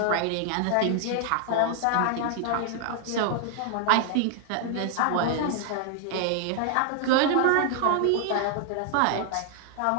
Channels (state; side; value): different; both; correlation 0.00